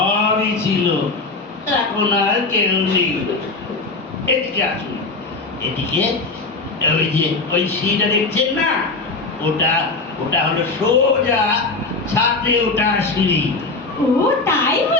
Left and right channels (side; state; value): right; quieter; 3.6 dB